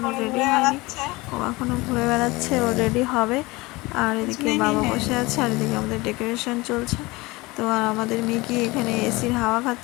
রেডি হয়নি, ও এখনও ঘুরে বেড়াচ্ছে, ও রেডি হবে। আর এদিকে বাবা বসে আছে, আর এদিকে আমাদের ডেকোরেশন চলছে। তো আর আমাদের মিকি এখানে এসির হাওয়া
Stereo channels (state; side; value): quieter; right; 22.3 dB